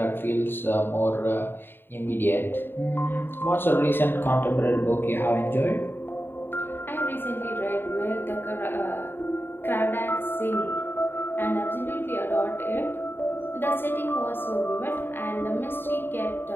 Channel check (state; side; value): late; right; 0.10 ms